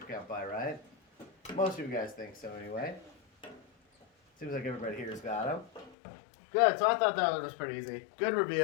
count by, right? Most of you guys think so anyway. Seems like everybody here's got them. Good, so I thought that one was pretty easy. Good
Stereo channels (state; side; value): drops out; right; at 6.0 s